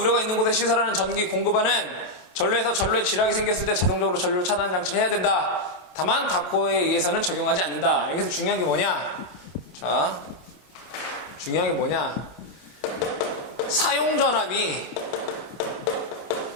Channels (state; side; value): late; right; 28 ms